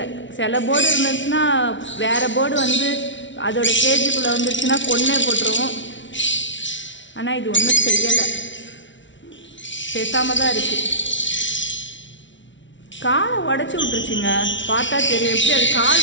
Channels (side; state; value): right; late; 0.55 ms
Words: சில போர்டு இருந்துச்சுன்னா வேறு போர்டு வந்து அதோட கேஜுக்குள்ளே வந்துருச்சுன்னா கொன்னே போட்டுருவோம். ஆனால் இது ஒன்றும் செய்யலை, பேசாமல் தான் இருக்குது. காலை உடச்சி விட்டுருச்சுங்க. பார்த்தா தெரியும். எப்படி அது